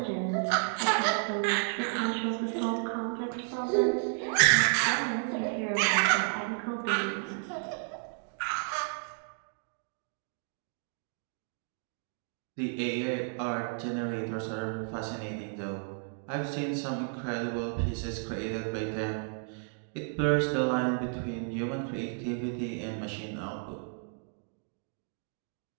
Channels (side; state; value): left; silent; 56 dB below the other